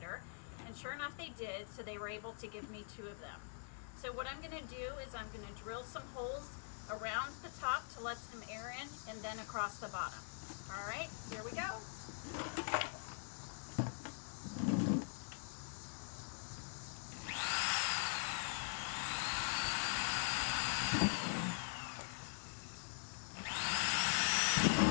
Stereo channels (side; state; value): right; silent; digital silence